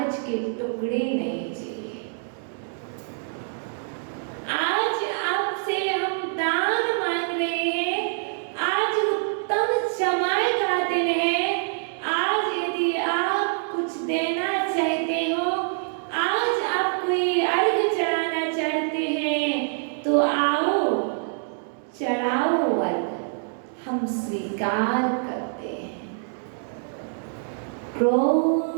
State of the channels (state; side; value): silent; left; digital silence